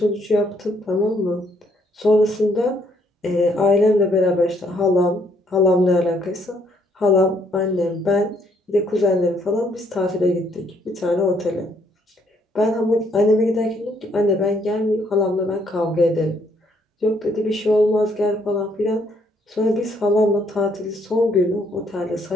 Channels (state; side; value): normal; both; correlation 0.68